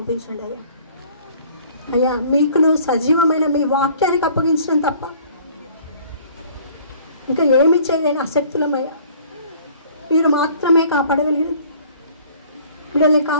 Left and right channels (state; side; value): inverted; both; correlation -0.53